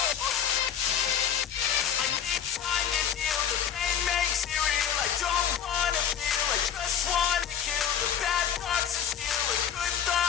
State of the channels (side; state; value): right; quieter; 8.9 dB